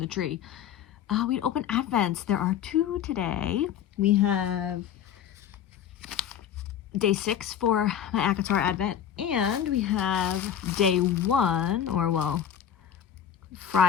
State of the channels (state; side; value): quieter; right; 9.5 dB